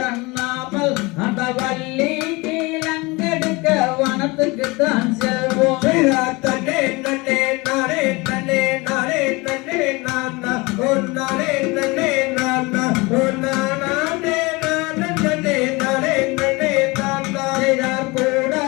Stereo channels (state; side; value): quieter; right; 24.7 dB